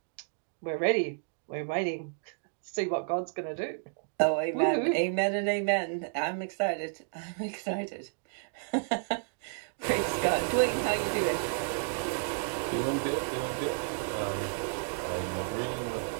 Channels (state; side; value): silent; left; digital silence